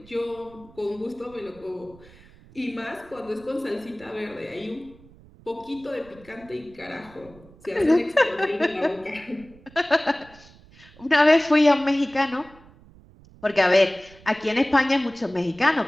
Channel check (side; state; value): right; noise; rumble, 24 dB below the sound